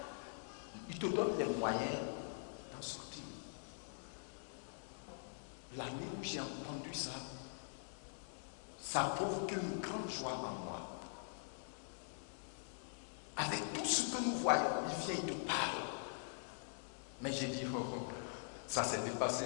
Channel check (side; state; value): right; silent; digital silence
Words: il te donne les moyens d'en sortir. L'année où j'ai entendu ça, ça a provoqué une grande joie en moi. Avec tout ce que nous voyons, il vient, il te parle. Mais j'ai dit, oh, oh, ça s'est dépassé